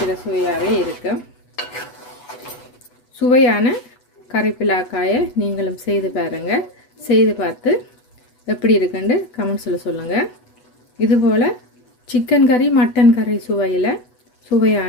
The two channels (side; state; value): right; late; 8.1 ms